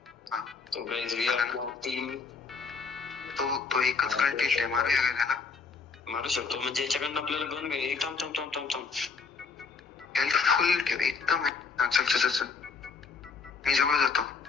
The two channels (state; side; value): quieter; right; 5.1 dB